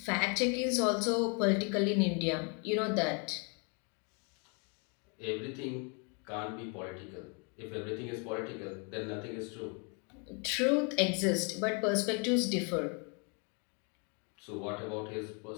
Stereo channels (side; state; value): right; quieter; 35.7 dB